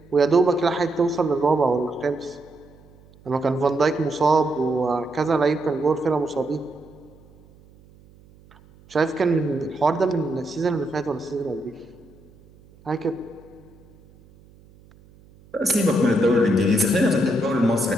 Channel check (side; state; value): right; noise; hum, 26 dB below the sound